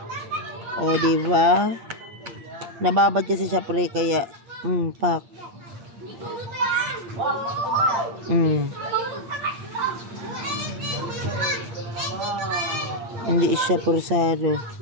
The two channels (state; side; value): late; left; 8.7 ms